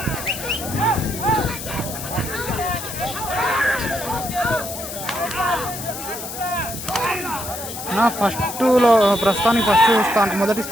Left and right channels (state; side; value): noise; left; hiss, 9 dB below the sound